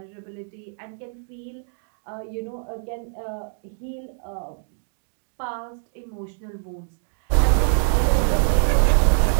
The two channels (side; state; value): left; silent; digital silence